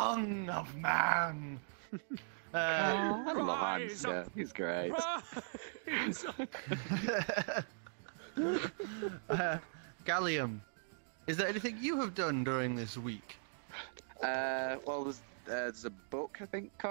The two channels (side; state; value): left; silent; digital silence